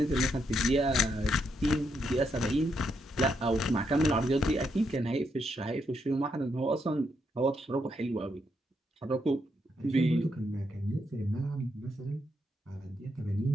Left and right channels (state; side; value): normal; both; correlation 0.79